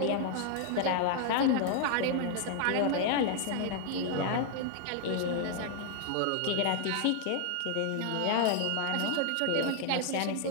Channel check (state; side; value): different; both; correlation 0.00